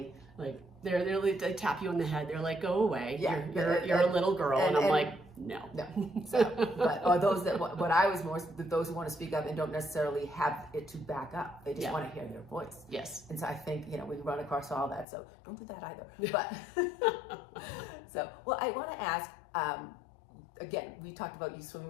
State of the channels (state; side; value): drops out; right; at 15.1 s